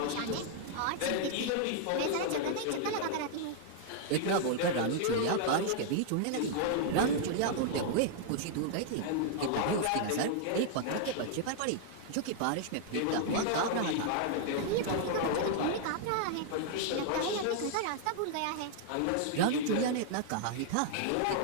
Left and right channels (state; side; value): different; both; correlation -0.01